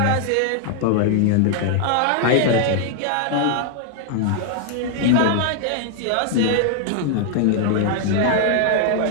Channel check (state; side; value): different; both; correlation 0.00